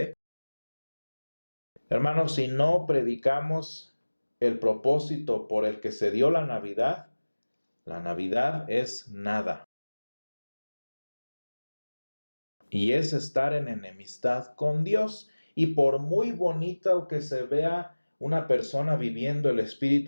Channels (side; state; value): both; inverted; correlation -1.00